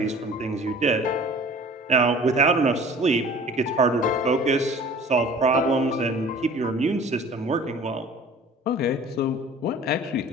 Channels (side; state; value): both; normal; correlation 0.45